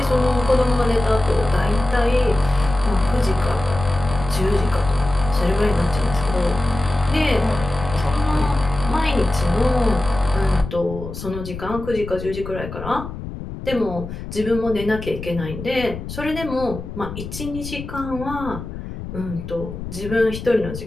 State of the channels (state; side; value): noise; left; rumble, 9 dB below the sound